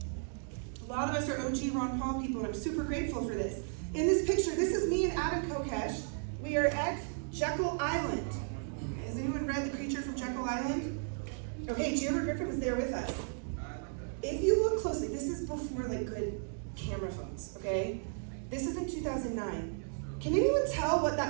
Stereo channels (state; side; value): silent; left; 55 dB below the other